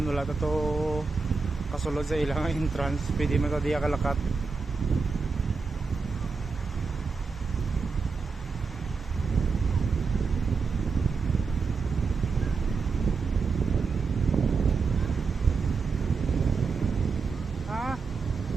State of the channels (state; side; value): quieter; left; 4.7 dB